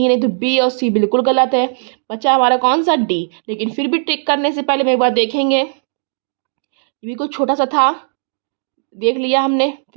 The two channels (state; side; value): silent; left; digital silence